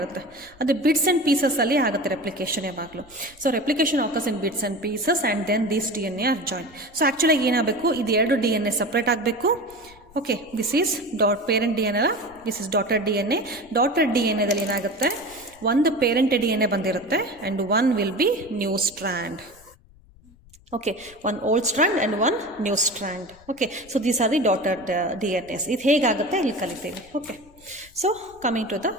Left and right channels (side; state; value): left; noise; rumble, 26 dB below the sound